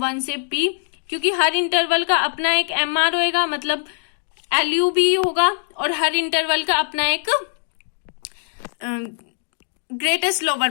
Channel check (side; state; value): right; silent; digital silence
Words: 1 से P। क्योंकि हर इंटरवल का अपना एक MR होएगा, मतलब LU भी होगा, और हर इंटरवल का अपना एक ग्रेटेस्ट लोअर